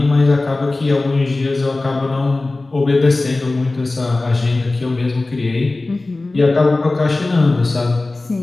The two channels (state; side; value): quieter; right; 3.1 dB